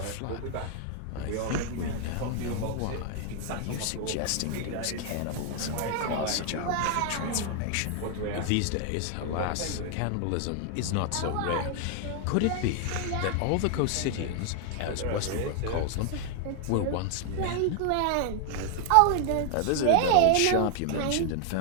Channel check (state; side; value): different; both; correlation 0.00